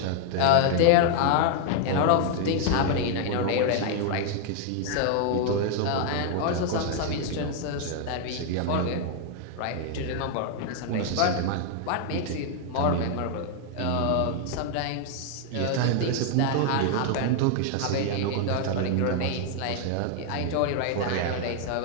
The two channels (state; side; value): different; both; correlation 0.00